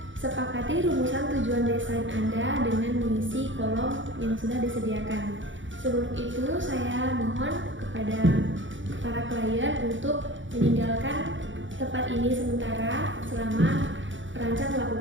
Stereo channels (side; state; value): left; late; 0.56 ms